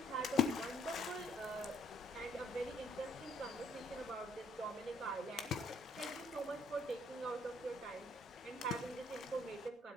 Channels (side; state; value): both; normal; correlation 0.66